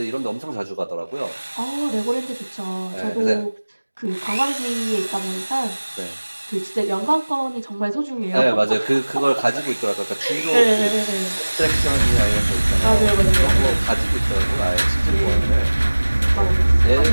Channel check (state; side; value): inverted; both; correlation -1.00